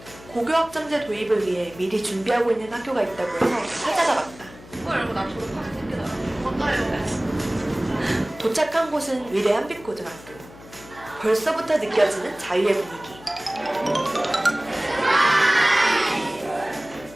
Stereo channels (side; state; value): left; noise; hum, 20 dB below the sound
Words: 고교학점제 도입을 위해 미리 준비하고 있는 학교가 있다고 해서 찾아가 봤다. 그거 알고 나 졸업하게 생기더라. 맞아요. 도착한 곳은 위례 한빛고등학교. 벌써부터 느껴지는 자유의 분위기.